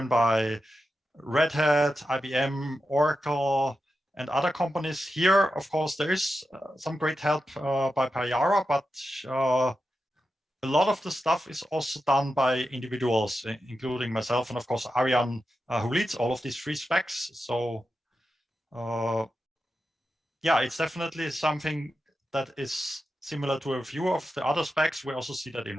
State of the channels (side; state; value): both; normal; correlation 0.90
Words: by Red Hat, IBM, Oracle, and other companies, here, of course, there is some great help by Payara, but a lot of the stuff is also done by individuals, including myself, and of course, Arian, who leads all of these free specs. So yeah, it's definitely something that is similar to a few of the other specs. We also see that in